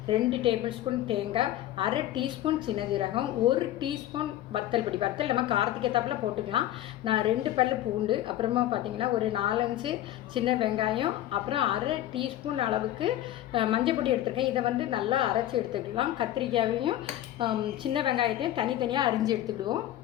2 டேபிள் ஸ்பூன் தேங்காய், அரை டீஸ்பூன் சின்ன ஜீரகம், 1 டீஸ்பூன் வத்தல் பொடி. வத்தல் நம்ம காரத்துக்கு ஏற்றாப்புல போட்டுக்கலாம். நான் 2 பல் பூண்டு, அப்புறமா பார்த்திங்கன்னா ஒரு 4-5 சின்ன வெங்காயம், அப்புறம் அரை டீஸ்பூன் அளவுக்கு மஞ்சள் பொடி எடுத்துருக்கேன். இதை நல்லா அரைச்சி எடுத்துக்கலாம். கத்திரிக்காயையும் சின்ன வெங்காயத்தையும் தனித்தனியாக அரிஞ்சு எடுத்துக்கிடுவோம்.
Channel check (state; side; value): quieter; right; 13.4 dB